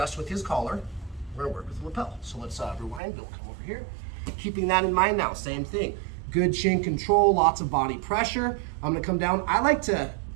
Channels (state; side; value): drops out; left; at 3.0 s